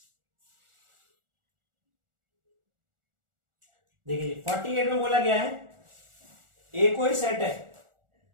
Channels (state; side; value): late; left; 1.4 ms